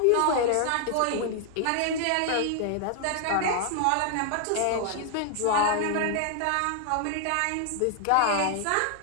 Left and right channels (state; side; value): different; both; correlation 0.00